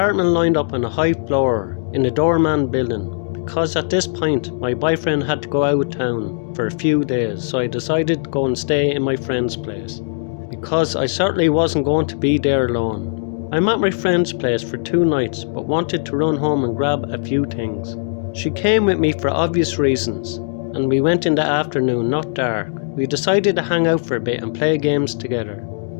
lined up on a high floor in the doorman building, because at this point my boyfriend had to go out of town for a few days, so I decided to go and stay in my friend's place, because I certainly wasn't going to be there alone. I'm at my friend's place for 2 nights, but wanted to run home and grab a few things. She came with me for obvious reasons, and we went in the afternoon, not dark. We decided to hang out for a bit and play games together.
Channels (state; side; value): silent; right; digital silence